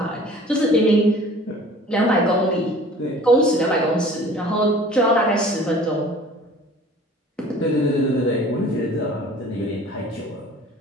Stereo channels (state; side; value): normal; both; correlation 0.47